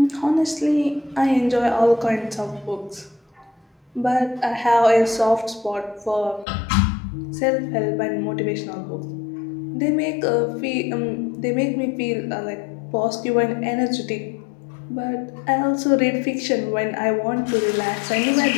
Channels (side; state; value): right; drops out; at 6.5 s